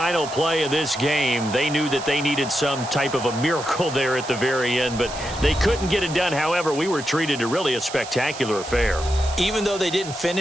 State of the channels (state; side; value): noise; right; hiss, 12 dB below the sound